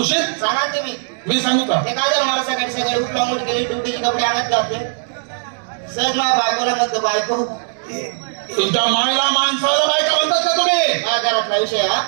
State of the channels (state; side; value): silent; left; digital silence